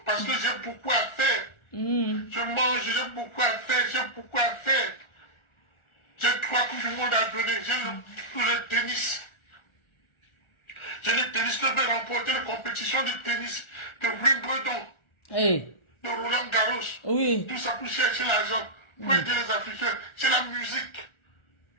parce que j'ai beaucoup à faire. Je mange, j'ai beaucoup à faire, j'ai beaucoup à faire. J'ai 3 coups du monde à donner. J'ai le tennis. J'ai le tennis que je vais remporter la compétition de tennis de Wimbledon, de Roland Garros. Oui. Tout ça pour chercher l'argent, pour aider les Africains. C'est la musique.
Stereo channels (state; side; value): late; right; 1.4 ms